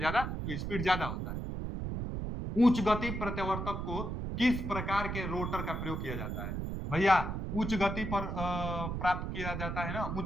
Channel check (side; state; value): right; noise; rumble, 3 dB below the sound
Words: तो स्पीड ज्यादा होता है। उच्च गति प्रत्यावर्तक को किस प्रकार के रोटर का प्रयोग किया जाता है, भैया उच्च गति पर प्राप्त किया जाता है ना